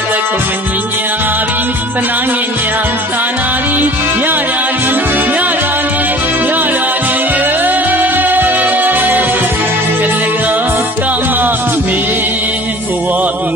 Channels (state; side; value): normal; both; correlation 0.45